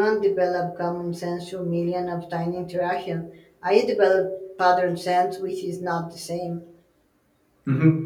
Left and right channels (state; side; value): identical; both; correlation 1.00